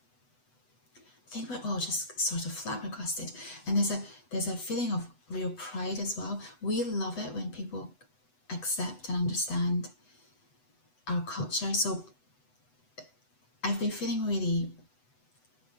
I think we're all just sort of flabbergasted, and there's a feeling of real pride as well. We love it when people accept and understand our culture. So I've been feeling really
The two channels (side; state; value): right; late; 8.0 ms